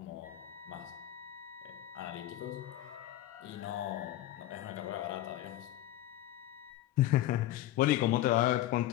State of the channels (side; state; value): right; quieter; 14.2 dB